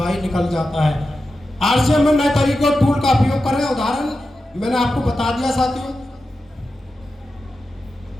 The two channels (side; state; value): both; normal; correlation 0.91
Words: निकल जाता है। आरसीएम में नए तरीके और टूल का उपयोग करें। उदाहरण मैंने आपको बता दिया साथियों।